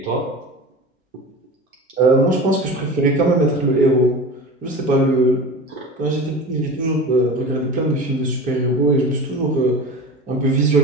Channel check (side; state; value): both; normal; correlation 0.32